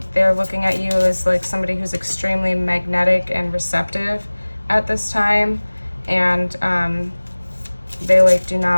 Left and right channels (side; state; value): both; inverted; correlation -1.00